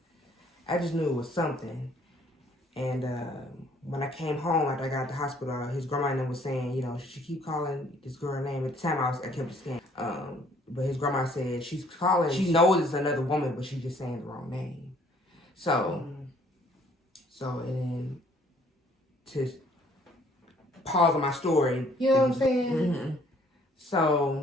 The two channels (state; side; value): normal; both; correlation 0.61